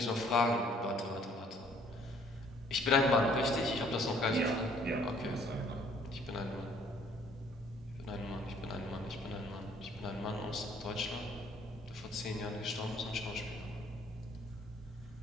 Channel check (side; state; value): both; normal; correlation 0.60